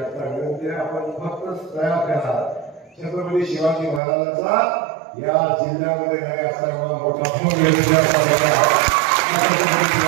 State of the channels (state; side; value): drops out; left; at 4.0 s